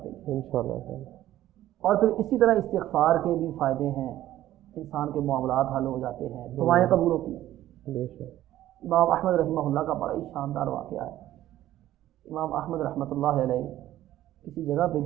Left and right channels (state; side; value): quieter; left; 13.7 dB